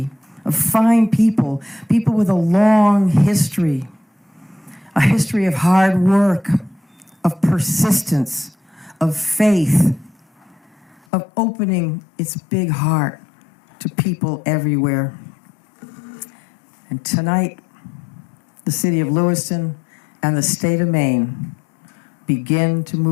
of fine people, people with a long history, a history of hard work, of persistence, of faith, of opening its big heart to people everywhere. And tonight, the city of Lewiston and the state of Maine begin to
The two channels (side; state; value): right; drops out; at 11.1 s